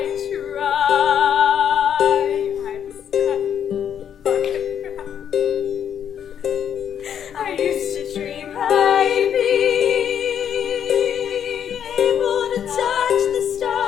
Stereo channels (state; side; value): quieter; right; 8.9 dB